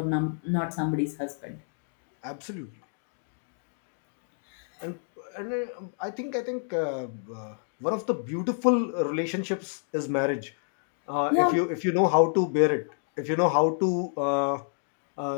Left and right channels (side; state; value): right; silent; digital silence